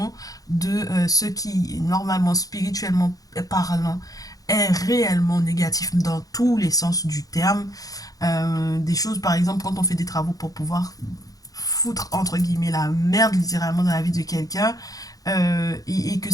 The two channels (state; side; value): late; right; 0.17 ms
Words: de ce qui, normalement, spirituellement parlant, est réellement négatif dans tous les sens du terme. Des choses, par exemple, quand on fait des travaux pour pouvoir foutre, entre guillemets, la merde littéralement dans la vie de quelqu'un, et que